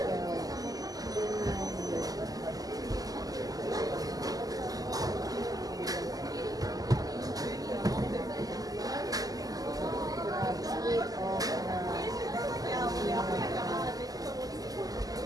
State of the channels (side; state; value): left; late; 0.17 ms